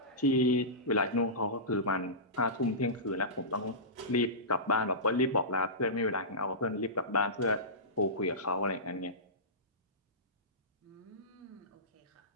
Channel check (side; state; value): both; normal; correlation -0.19